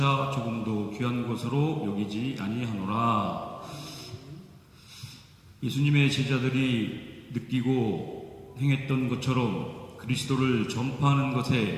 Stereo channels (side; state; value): both; identical; correlation 1.00